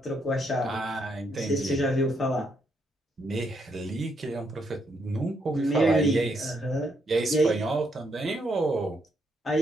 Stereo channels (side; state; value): both; normal; correlation 0.76